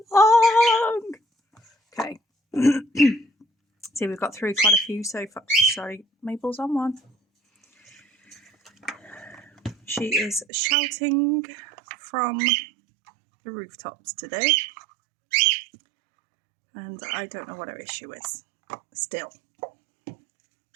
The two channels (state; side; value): drops out; left; at 10.5 s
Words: long. Okay. See, we've got through quite a few so far. Sorry, Mabel's on one. She is shouting from the rooftops today. And I don't know what her issue is still.